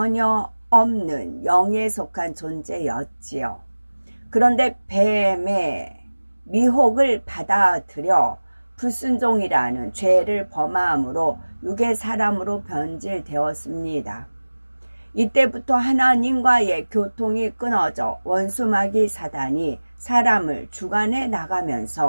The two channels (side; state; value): both; inverted; correlation -1.00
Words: 없는 영에 속한 존재였지요. 그런데 뱀의 미혹을 받아들여 불순종이라는 죄를 범함으로 육의 사람으로 변질되었습니다. 이때부터 하나님과의 교통이 끊어져 원수마귀 사단이 사람을 주관해